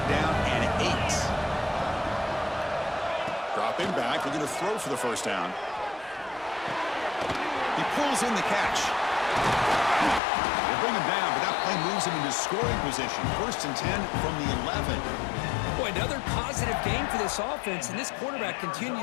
down and 8. Dropping back, looking to throw for the first down. He pulls in the catch. They bring him down, but that play moves him into scoring position. 1st and 10 from the 11. Boy, another positive game for this offense, and this quarterback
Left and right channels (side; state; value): right; drops out; at 10.2 s